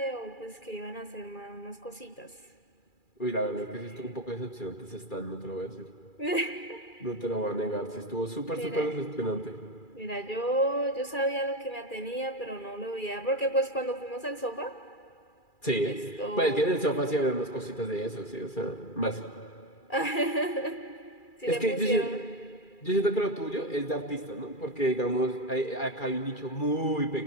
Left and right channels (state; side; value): late; right; 2.4 ms